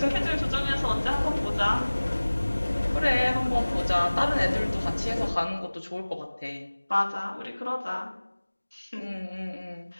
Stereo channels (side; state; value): both; inverted; correlation -1.00